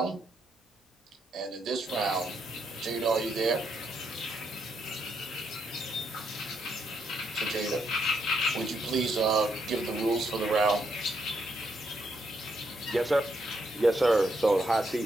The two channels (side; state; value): both; normal; correlation 0.77